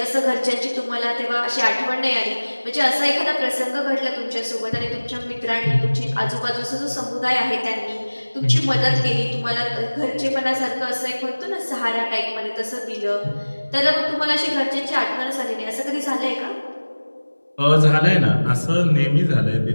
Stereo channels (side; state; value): both; inverted; correlation -1.00